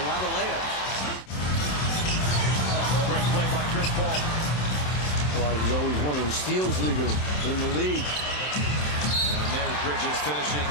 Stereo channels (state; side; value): late; right; 27 ms